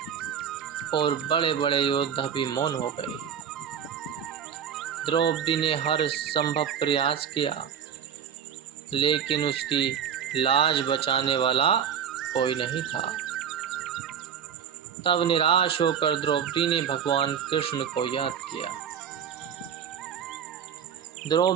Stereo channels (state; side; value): quieter; left; 8.2 dB